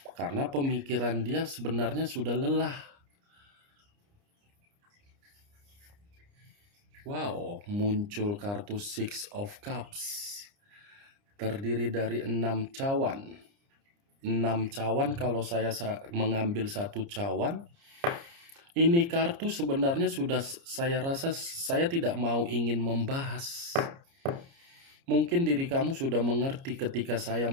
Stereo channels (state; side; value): late; left; 29 ms